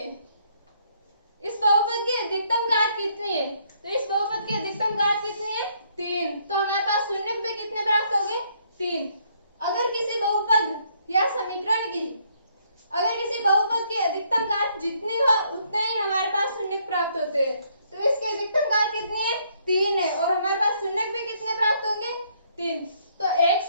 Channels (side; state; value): both; inverted; correlation -0.69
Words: इस बहुपद की अधिकतम घात कितनी है? तो इस बहुपद की अधिकतम घात कितनी है? 3। तो हमारे पास शून्य भी कितने प्राप्त होंगे? 3। अगर किसी बहुपद या समीकरण की की अधिकतम घात जितनी हो उतने ही हमारे पास शून्य प्राप्त होते हैं। तो इसकी अधिकतम घात कितनी है? 3 है और हमारे पास शून्य भी कितने प्राप्त होंगे? 3। तो एक